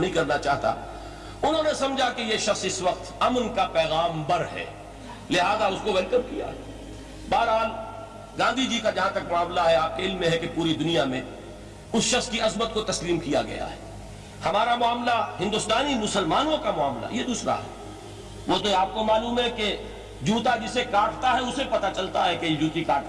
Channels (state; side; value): identical; both; correlation 1.00